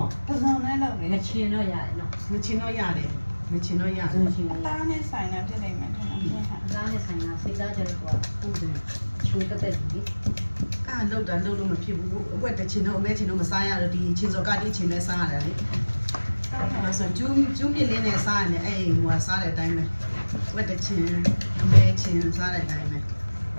ပစုံနဲ့လုပ်နေချင်တော့ရတယ်နော်ချင်တော့ရတယ်အသားနဲ့ဆိုင်တာဖြစ်နေမှထင်တယ်အသားနဲ့ဆိုင်တာစိတ်သားကြတော့ဟုတ်တယ်ချိုးတက်ပြီလုတ်လို့မဖြစ်ဘူးအဝက်တချင်တော့အမဲချင်တော့မစားရတော့ဒီချင်းစော်ကတိချင်နဲ့စားရတယ်လေအဲ့ဆိုကျူးမြင့်လေးနဲ့စားရတယ်အဲ့ဟိုစားတဲ့အတိုင်းပဲဝက်တချင်အမဲချင်စားတဲ့အတိုင်းပဲ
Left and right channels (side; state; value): both; inverted; correlation -1.00